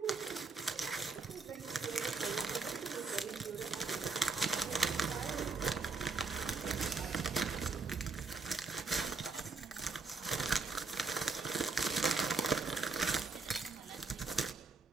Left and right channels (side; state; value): left; quieter; 4.1 dB